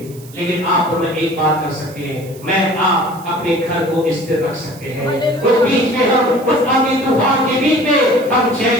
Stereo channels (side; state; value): right; noise; hiss, 22 dB below the sound